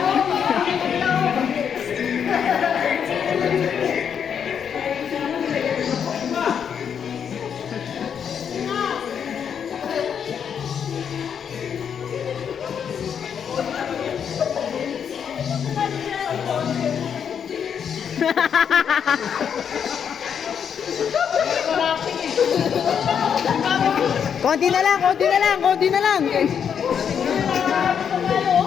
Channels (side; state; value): right; quieter; 7.7 dB